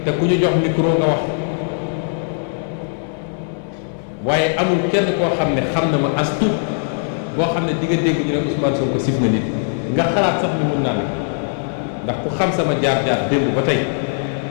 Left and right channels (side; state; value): right; silent; digital silence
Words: te ku ñu jox micro nga wax waaye amul kenn koo xam ne xam na ma as tuut boo xam ne di nga dégg ñu ne Ousmane Sonko sif na nit nga xalaat sax ni mun naa ne ndax ku xam sama jaar-jaar démb ba tey